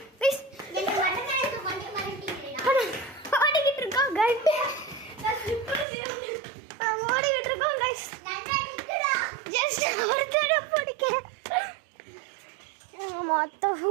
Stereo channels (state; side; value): drops out; left; at 5.9 s